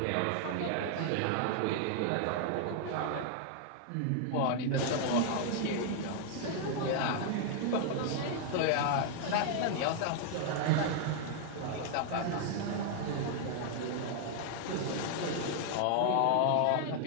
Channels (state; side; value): different; both; correlation 0.00